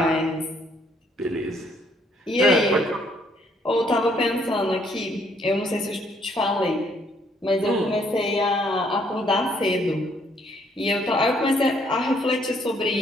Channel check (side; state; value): both; normal; correlation 0.67